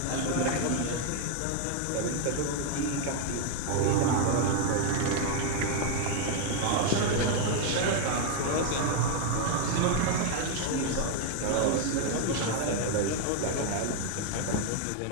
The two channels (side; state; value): both; different; correlation 0.01